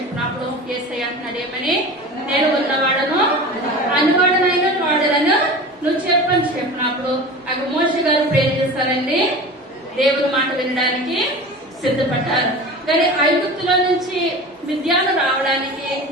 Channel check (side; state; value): both; normal; correlation 0.34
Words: యేసయ్య అంటున్నాడు, ఏమని, నేను ఉన్నవాడను అనువాడనైనా వాడలను నువ్వు చెప్పని చెప్పినప్పుడు అక్కడ మోషే గారు ప్రేర్ చేస్తారండి, దేవుని మాట వినడానికి సిద్ధపడ్డారు. కానీ ఐగుప్తులో నుంచి మిద్యాను రావడానికి